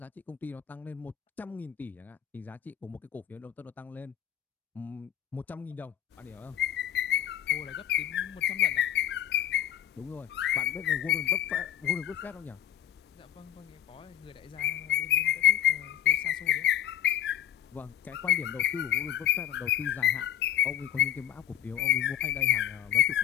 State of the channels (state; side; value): quieter; right; 11.1 dB